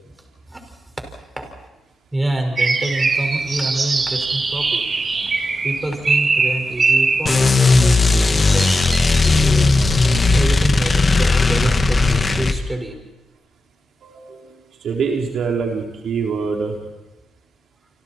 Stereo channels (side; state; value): both; normal; correlation 0.89